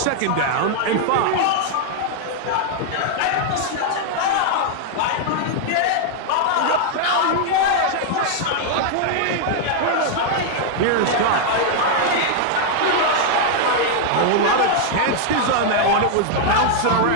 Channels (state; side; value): different; both; correlation 0.00